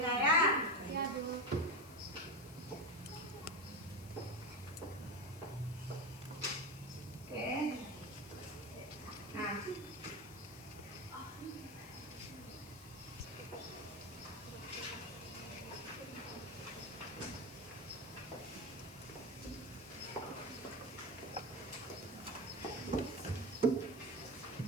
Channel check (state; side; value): noise; left; hiss, 18 dB below the sound